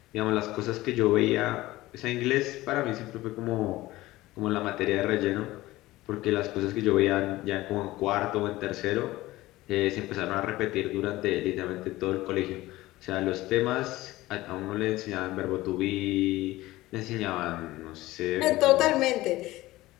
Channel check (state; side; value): quieter; right; 17.8 dB